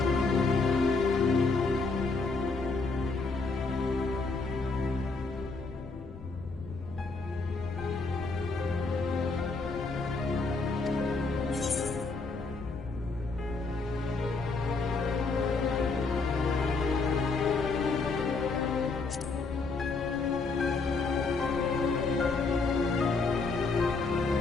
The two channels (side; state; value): right; quieter; 4.0 dB